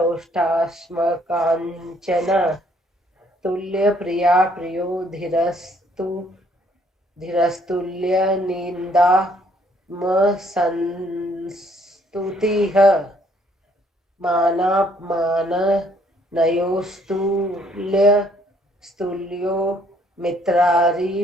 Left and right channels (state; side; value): normal; both; correlation 0.65